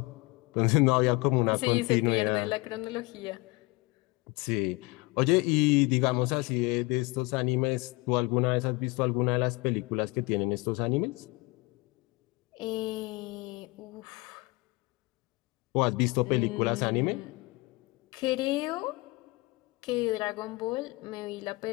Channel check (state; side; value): quieter; right; 24.3 dB